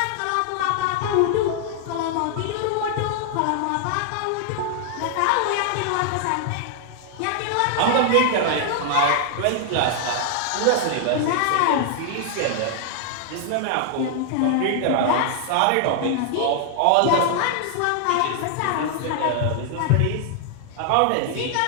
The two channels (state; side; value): different; both; correlation 0.00